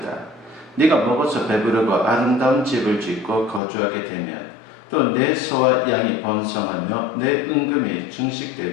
네가 먹어서 배부르고 아름다운 집을 짓고 거주하게 되면 또 내 소와 양이 번성하며 내 은금이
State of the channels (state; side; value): drops out; right; at 3.6 s